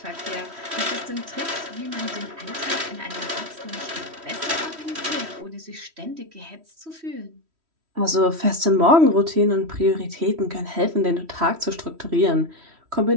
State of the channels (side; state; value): left; late; 3.1 ms